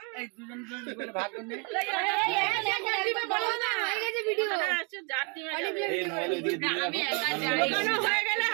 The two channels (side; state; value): left; quieter; 34.6 dB